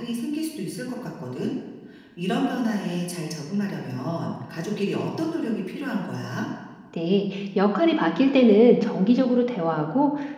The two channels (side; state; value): both; identical; correlation 1.00